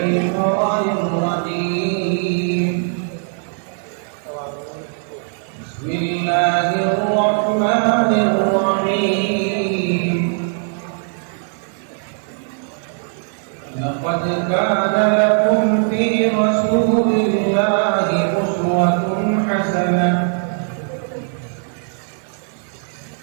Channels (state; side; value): silent; left; 58 dB below the other